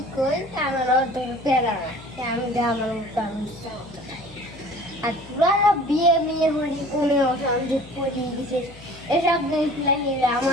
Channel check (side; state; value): left; noise; hum, 20 dB below the sound